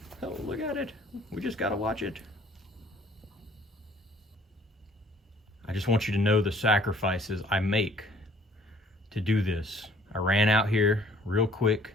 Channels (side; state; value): both; normal; correlation 0.57